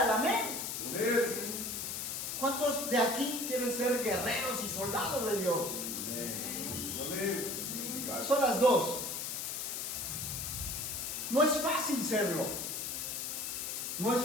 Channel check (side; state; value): left; noise; hiss, 3 dB below the sound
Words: amén. Amén. ¿Cuántos de aquí quieren ser guerreros y soldados de Dios? Amén. Son las dos. No es fácil serlo. No es